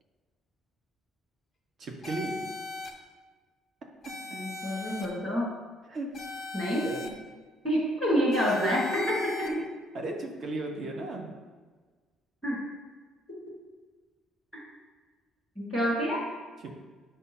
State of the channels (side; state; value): both; normal; correlation 0.67